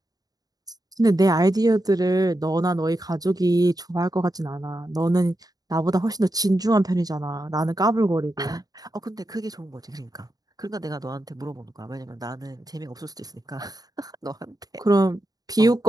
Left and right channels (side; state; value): left; late; 0.18 ms